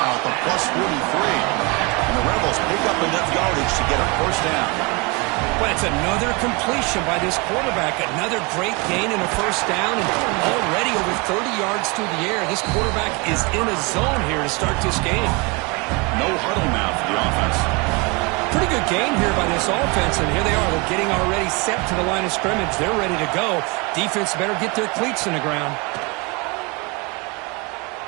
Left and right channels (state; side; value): quieter; left; 28.8 dB